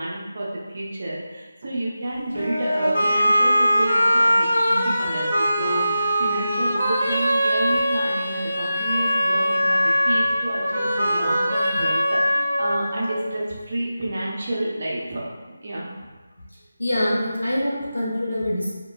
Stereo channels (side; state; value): both; inverted; correlation -0.93